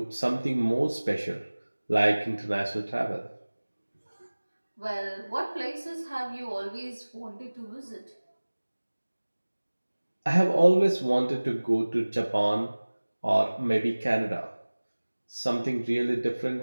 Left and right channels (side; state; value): both; inverted; correlation -1.00